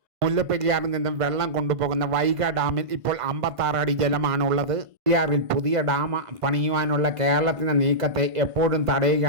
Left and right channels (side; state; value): left; late; 1.5 ms